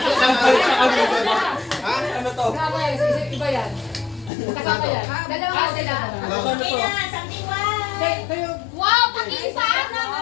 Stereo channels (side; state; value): right; drops out; at 4.3 s